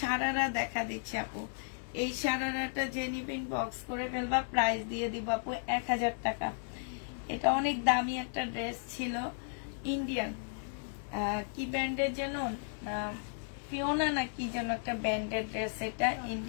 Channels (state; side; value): silent; right; 55 dB below the other